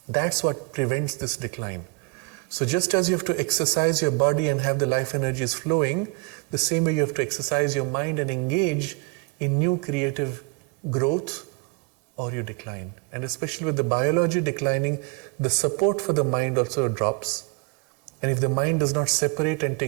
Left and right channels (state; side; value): quieter; left; 28.3 dB